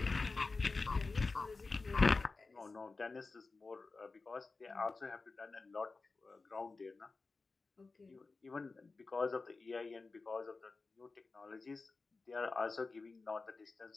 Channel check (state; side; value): quieter; right; 3.9 dB